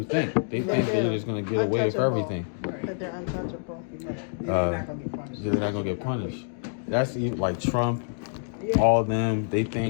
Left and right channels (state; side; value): silent; right; digital silence